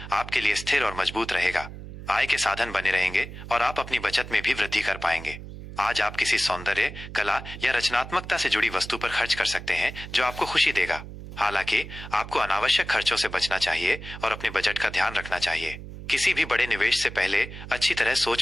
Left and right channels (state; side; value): noise; right; hum, 12 dB below the sound